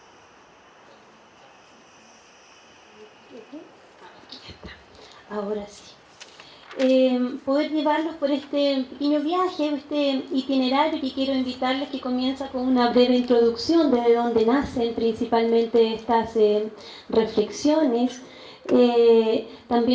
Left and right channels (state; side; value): identical; both; correlation 1.00